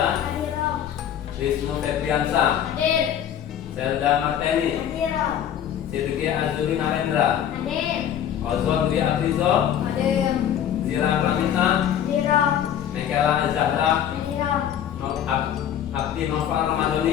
Wisnu Febriansa, Zelda Marteni, Sidki Azuri Narendra, Ozon Dwi Aprizo, Zira Pramita, Mekela Zahra, Abdi Noval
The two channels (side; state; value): right; quieter; 9.9 dB